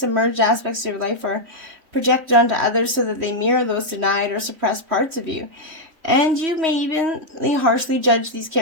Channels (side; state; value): left; late; 3.1 ms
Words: aspects of your life are projected onto others so that they mirror those denied or suppressed parts of you. And you may even harshly judge these